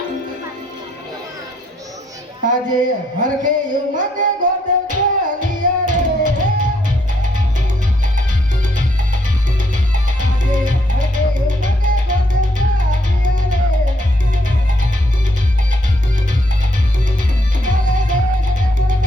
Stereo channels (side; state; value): both; normal; correlation 0.72